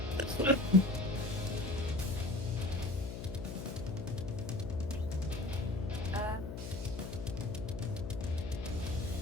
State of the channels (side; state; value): left; noise; hum, 7 dB below the sound